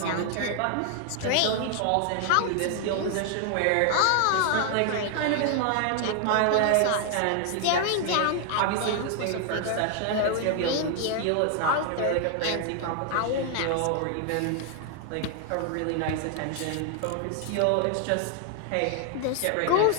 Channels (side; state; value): both; different; correlation 0.00